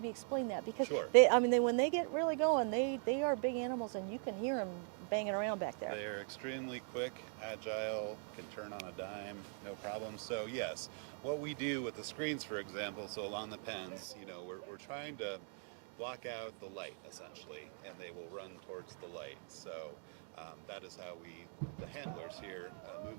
explain that, because when they get really going, they are big animals, and you can hear them banging around back there. They are extremely quick, agile, can turn on a dime, no problem. So yes, what we do with the screens, for example, so along the pens, you know, we're trying to block out the light essentially, and they will run towards the light. So that is how the handlers here, move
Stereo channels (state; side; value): silent; left; 50 dB below the other